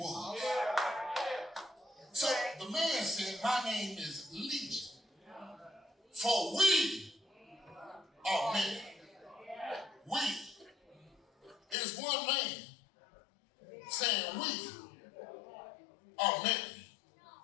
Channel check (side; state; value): right; drops out; at 11.8 s